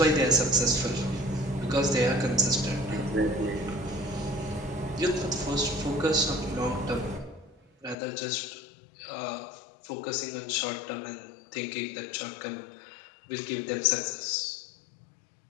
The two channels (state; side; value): drops out; right; at 8.0 s